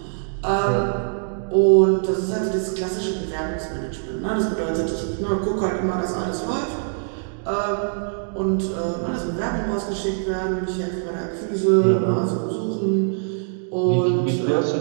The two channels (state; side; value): silent; left; digital silence